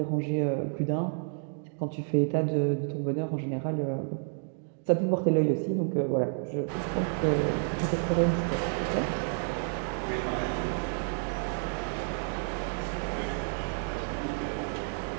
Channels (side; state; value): left; silent; 58 dB below the other